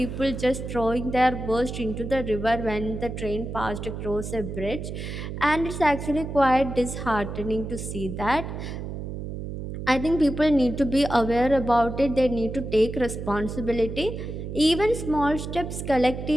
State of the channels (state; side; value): noise; right; hum, 7 dB below the sound